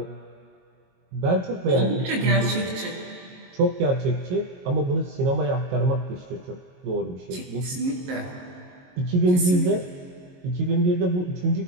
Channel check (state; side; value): late; left; 22 ms